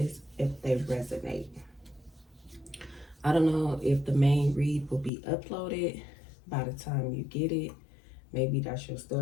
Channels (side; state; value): right; drops out; at 5.1 s